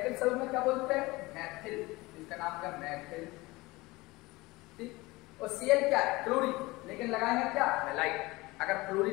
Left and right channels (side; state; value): right; quieter; 21.6 dB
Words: समूह में क्या बोलते हैं? मैथिल, इसका नाम क्या? मैथिल, ठीक। और Cl क्या है? क्लोरीन, लेकिन लगाएंगे क्या? हैलाइड। अगर